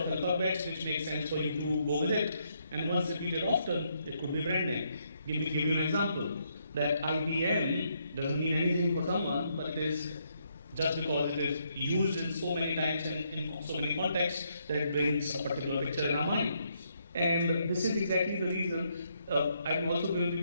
alphabets, which make sense for you to go with it. And once repeated often, it could be brand name. Give you an example. That IBM doesn't mean anything for someone, but it is just because it is used in so many times and in so many contexts that it brings a particular picture in our mind. And this is exactly the reason I'm also going to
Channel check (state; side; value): inverted; both; correlation -0.75